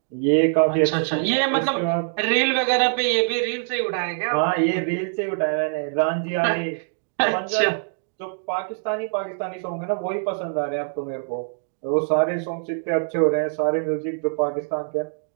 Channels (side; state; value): left; silent; digital silence